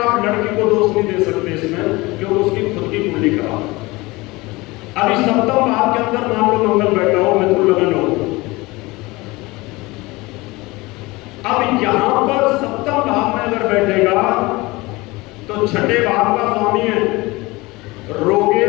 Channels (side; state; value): right; quieter; 22.1 dB